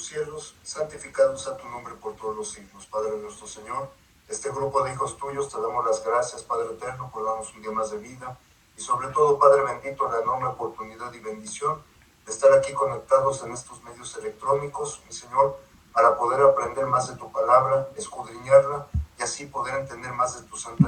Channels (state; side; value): identical; both; correlation 1.00